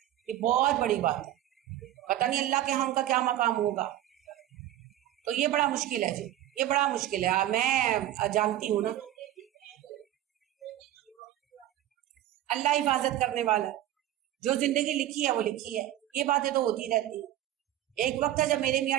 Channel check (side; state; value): left; quieter; 13.1 dB